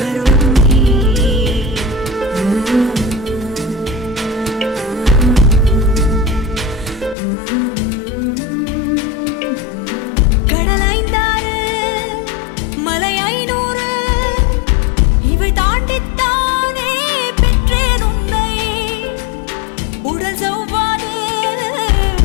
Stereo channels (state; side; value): drops out; right; at 7.2 s